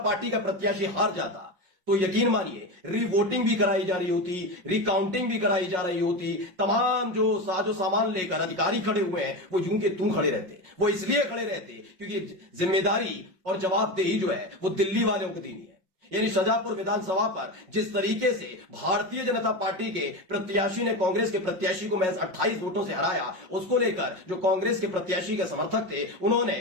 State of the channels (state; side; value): late; left; 5.5 ms